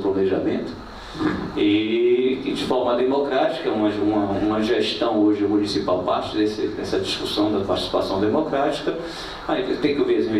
e de forma democrática, uma gestão hoje municipal parte dessa discussão da participação democrática. Aí tem que ouvir as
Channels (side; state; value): both; identical; correlation 1.00